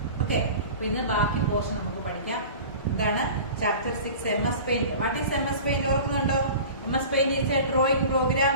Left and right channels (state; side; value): inverted; both; correlation -0.38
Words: ഓക്കെ, അപ്പൊ ഇന്ന് ബാക്കി പോർഷൻ നമുക്ക് പഠിക്കാം. എന്താണ് chapter 6 MS Paint. What is MS Paint? ഓർക്കുന്നുണ്ടോ? MS Paint is a drawing program